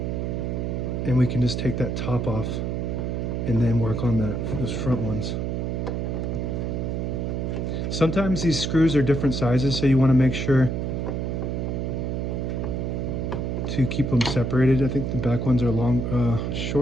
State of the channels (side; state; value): right; noise; hum, 1 dB below the sound